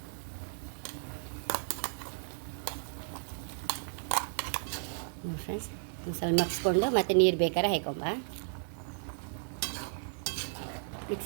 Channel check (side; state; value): left; silent; 55 dB below the other